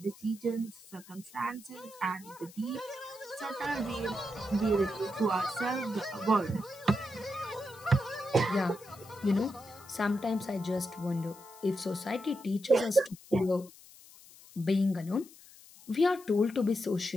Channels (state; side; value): noise; left; hiss, 21 dB below the sound